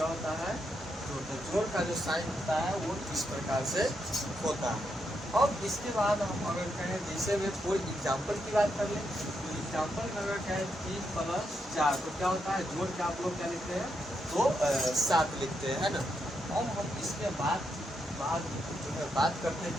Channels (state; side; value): normal; both; correlation 0.81